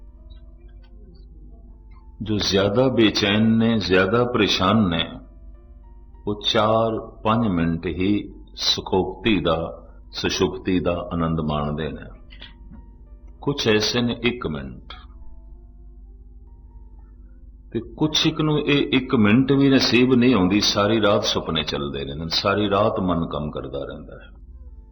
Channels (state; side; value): identical; both; correlation 1.00